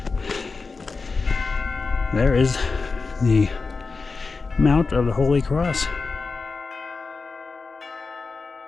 there is the Mount of the Holy Cross.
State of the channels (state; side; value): quieter; right; 4.3 dB